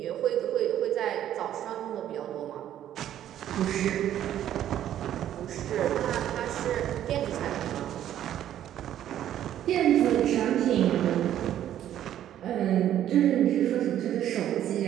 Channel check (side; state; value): left; quieter; 11.4 dB